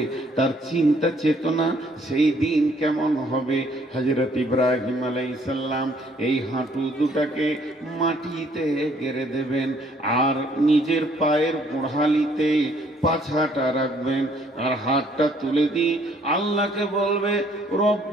তার চিন্তা চেতনা সেই দিন কেমন হবে। হযরত ইব্রাহিম আলাইহিস সালাম এই হাঁটু দুটাকে মাটিতে গেড়ে দেবেন, আর নিজের পায়ের গোড়ালিতে পাছাটা রাখবেন, আর হাতটা তুলে দিয়ে আল্লাহকে বলবে,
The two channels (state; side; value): normal; both; correlation 0.63